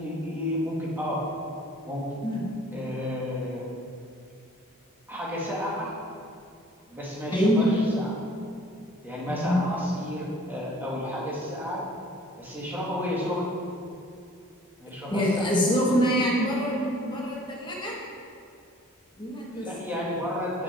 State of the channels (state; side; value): normal; both; correlation 0.53